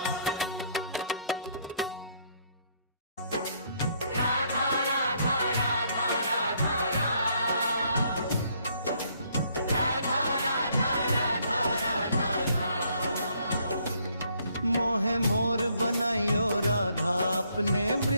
मोहे मोर बनाइयो राधा अपने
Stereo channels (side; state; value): both; inverted; correlation -0.68